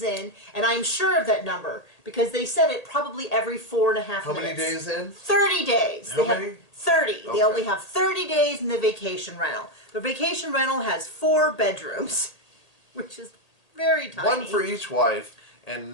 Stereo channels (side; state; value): right; late; 1.8 ms